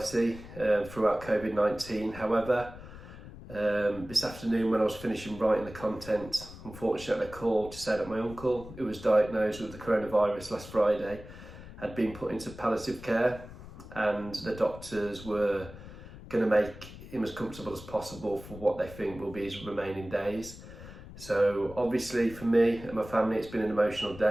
throughout COVID-19. However, this afternoon when I was finishing writing the content, unfortunately I called to say that my uncle, who was diagnosed with the coronavirus last Friday, had been put into palliative care, and the doctors were going to make him as comfortable as possible for what they think will be his remaining days. So obviously for me and my family it's been an emotional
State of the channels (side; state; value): left; noise; rumble, 15 dB below the sound